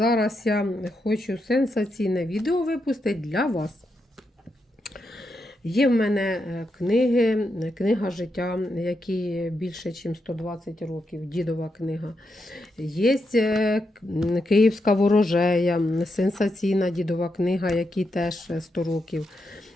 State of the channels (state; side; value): normal; both; correlation 0.84